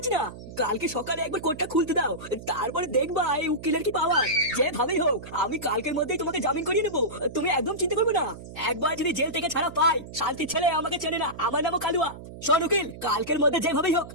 না। কালকে সকালে একবার কোর্টটা খুলতে দাও, তারপরে দেখবা এই উকিলের কি পাওয়ার। যেভাবেই হোক আমি কালকের মধ্যেই তোমাকে জামিন করিয়ে নেবো, তুমি একদম চিন্তা করবে না। একবার যদি জেল থেকে ছাড়া পাই, শান্তির ছেলে আমাকে চেনে না, আমার নামও কালুয়া। শোন উকিল, কালকের মধ্যে যেভাবেই হোক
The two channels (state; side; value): noise; right; hum, 14 dB below the sound